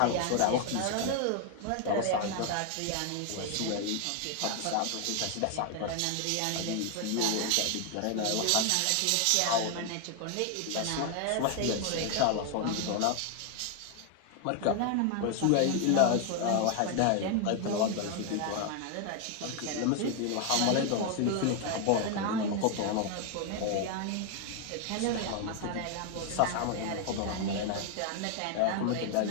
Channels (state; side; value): different; both; correlation 0.00